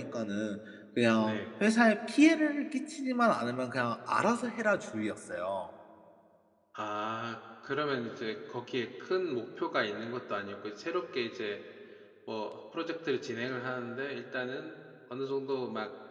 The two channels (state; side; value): identical; both; correlation 1.00